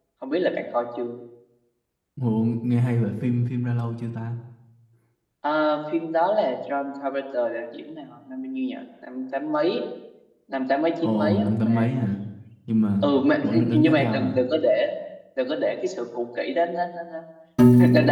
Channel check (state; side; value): identical; both; correlation 1.00